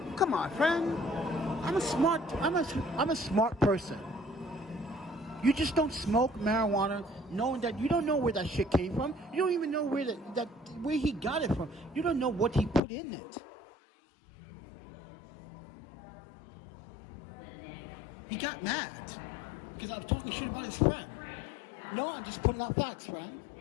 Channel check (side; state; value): right; drops out; at 12.8 s